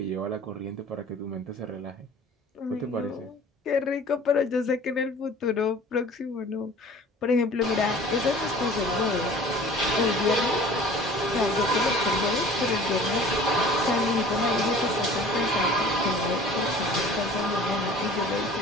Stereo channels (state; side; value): normal; both; correlation 0.46